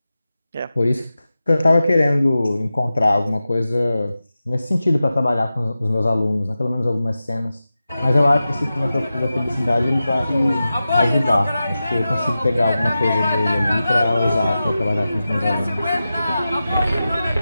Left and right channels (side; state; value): both; inverted; correlation -0.93